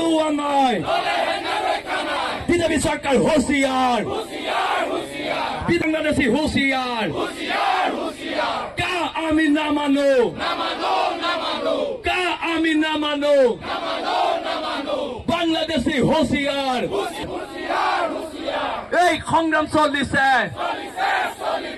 নাই বিজেপি চৰকাৰ হুঁচিয়াৰ বাংলাদেশী হুঁচিয়াৰ কা আমি নামানো কা আমি নামানো বাংলাদেশী হুঁচিয়াৰ এই সংগ্ৰাম চলিছে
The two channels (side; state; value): both; identical; correlation 1.00